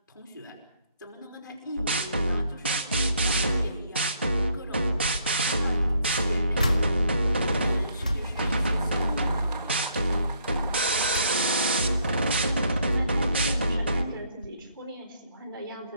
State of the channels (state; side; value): inverted; both; correlation -0.68